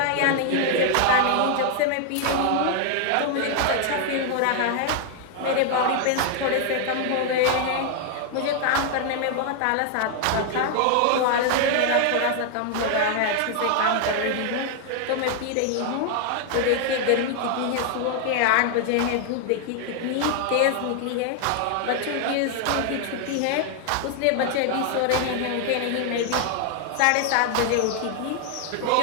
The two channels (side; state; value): both; different; correlation 0.00